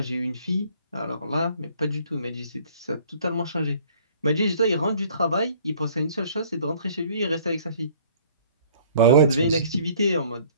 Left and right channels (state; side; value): inverted; both; correlation -0.55